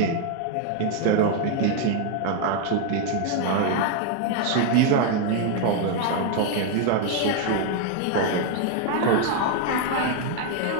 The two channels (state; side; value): different; both; correlation 0.00